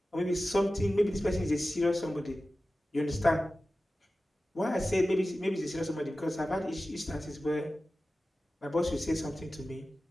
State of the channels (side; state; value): both; normal; correlation 0.95